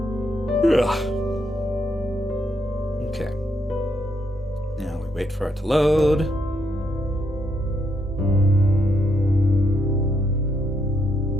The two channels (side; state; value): both; normal; correlation 0.77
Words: Okay. Now we wait for it to load.